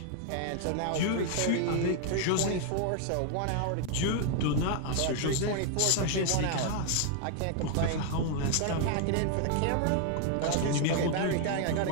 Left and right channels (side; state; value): both; different; correlation 0.00